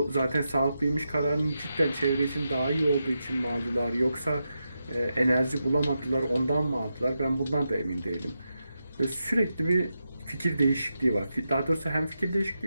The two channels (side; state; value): both; inverted; correlation -0.88